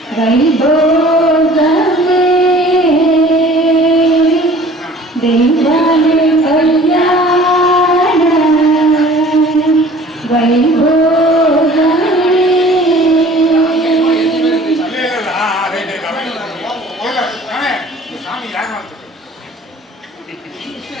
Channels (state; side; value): normal; both; correlation 0.49